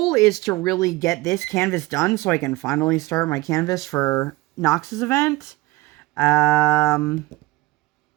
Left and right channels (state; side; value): quieter; left; 21.4 dB